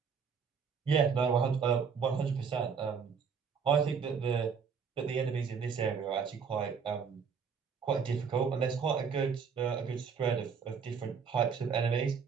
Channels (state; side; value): quieter; left; 6.2 dB